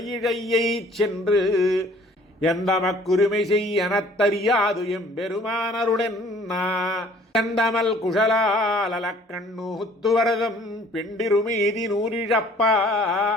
சென்று எந்தமக்குரிமை செய்யனத்தறியாது எம்பெருமானருடென்னா கந்தமல் குஷலாலக்கண்ணூத்துவரதம் பெண்டிருமீதி நூறிழப்பா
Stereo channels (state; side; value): normal; both; correlation 0.55